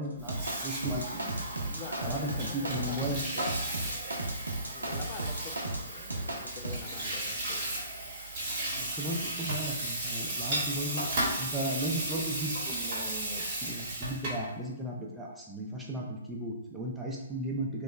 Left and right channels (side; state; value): both; inverted; correlation -0.44